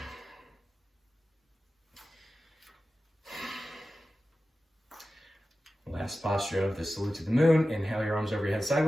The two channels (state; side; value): normal; both; correlation 0.94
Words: Last posture of the salute to the moon. Inhale your arms over your head